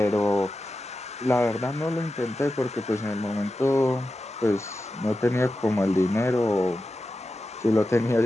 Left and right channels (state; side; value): normal; both; correlation 0.91